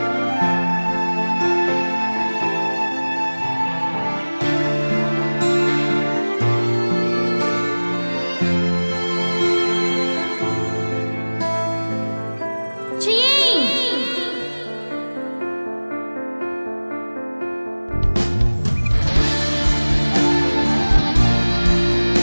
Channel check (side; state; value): both; inverted; correlation -1.00